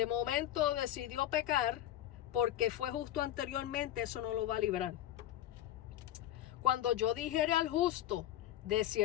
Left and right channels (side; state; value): right; quieter; 12.7 dB